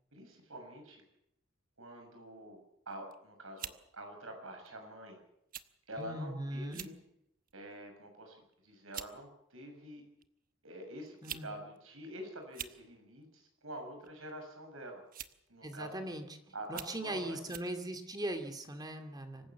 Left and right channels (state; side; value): normal; both; correlation 0.33